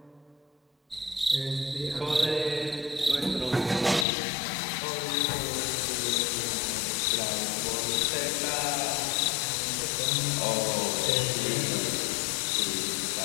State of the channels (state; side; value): drops out; right; at 4.0 s